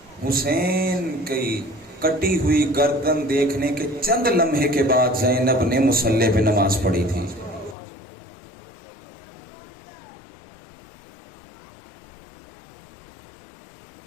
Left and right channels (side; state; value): right; drops out; at 7.8 s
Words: حسین کی کٹی ہوئی گردن دیکھنے کے چند لمحے کے بعد زینب نے مصلی پہ نماز پڑھی تھی۔